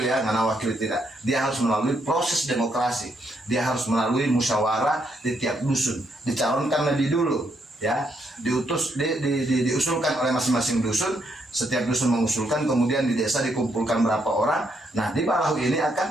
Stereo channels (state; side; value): normal; both; correlation 0.76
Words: wakil tidak. Dia harus melalui proses demokrasi. Dia harus melalui musyawarah di tiap dusun. Dicalonkan lebih dulu, ya, diusulkan oleh masing-masing dusun. Setiap dusun mengusulkan, kemudian di desa dikumpulkan berapa orang. Nah, di Balahu ini